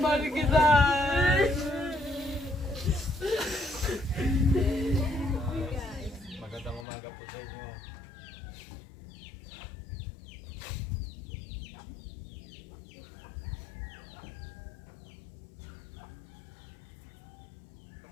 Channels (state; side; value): drops out; right; at 6.9 s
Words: kita. Magandang umaga po sa inyo.